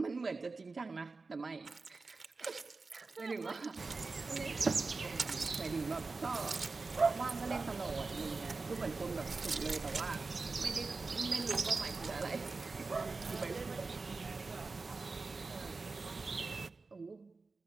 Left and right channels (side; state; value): left; quieter; 3.9 dB